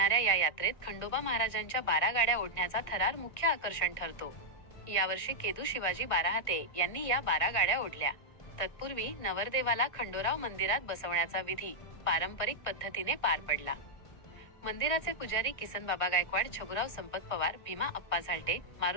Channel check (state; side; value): late; right; 1.5 ms